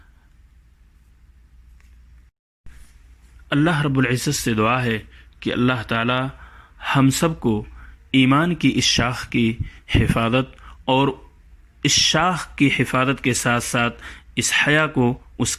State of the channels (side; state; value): both; identical; correlation 1.00